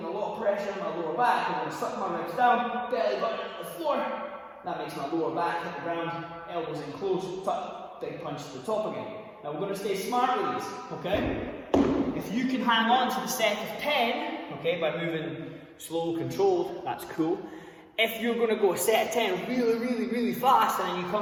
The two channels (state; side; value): identical; both; correlation 1.00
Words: a lot of pressure on my lower back. I'm going to suck my ribs down, belly button to the floor. That makes my lower back hit the ground, elbows in close, tuck, big punch to the top again. Now we're going to stay smart with these, okay? If you can hang on to the set of 10, okay, by moving slow, controlled, that's cool. If you're going to go a set of 10 really fast and then you